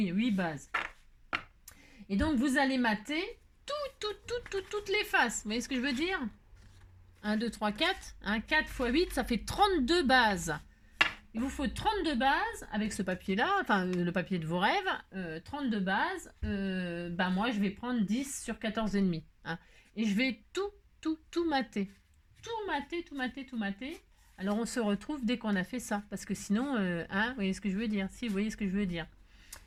8 bases. Et donc, vous allez mater toutes les faces. Vous voyez ce que je veux dire? 1, 2, 3, 4. 4 x 8, ça fait 32 bases. Il vous faut 32 bases avec ce papier-là, enfin le papier de vos rêves. 32 bases. Moi, je vais prendre 10 sur 14,5. Hein. Et je vais tout mater. Tout mater. Alors, on se retrouve dès qu'on a fait ça. Parce que sinon, vous voyez ce que je veux dire? Si, vous voyez ce que je veux dire.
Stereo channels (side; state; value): both; identical; correlation 1.00